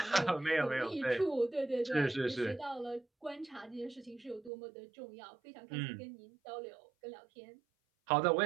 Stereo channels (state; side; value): drops out; left; at 4.5 s